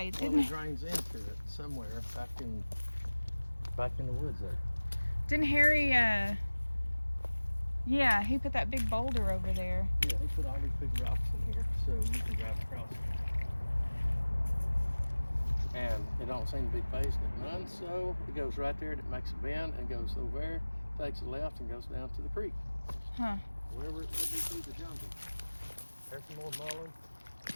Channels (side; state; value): both; inverted; correlation -1.00